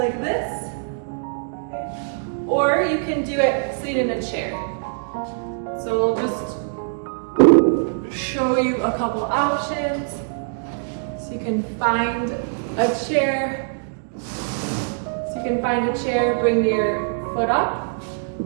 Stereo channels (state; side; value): silent; left; digital silence